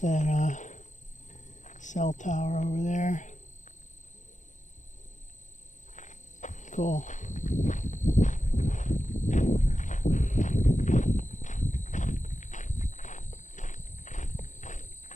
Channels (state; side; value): late; right; 0.36 ms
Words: cell tower over there. Cool.